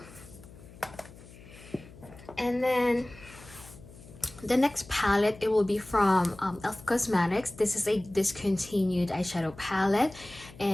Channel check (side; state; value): left; noise; hum, 20 dB below the sound